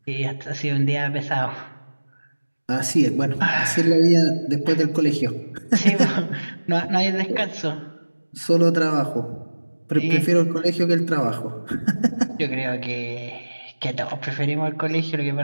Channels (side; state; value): both; inverted; correlation -1.00